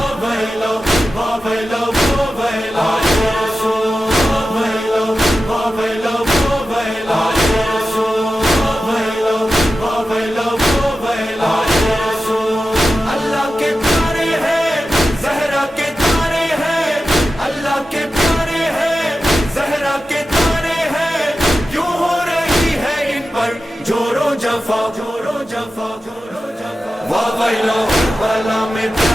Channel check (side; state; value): both; normal; correlation 0.93